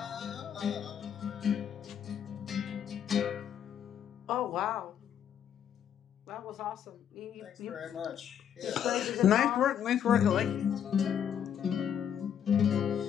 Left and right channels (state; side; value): quieter; right; 8.9 dB